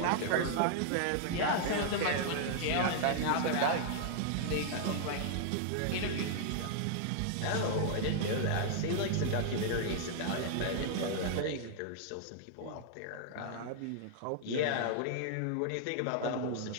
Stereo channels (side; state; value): both; different; correlation -0.01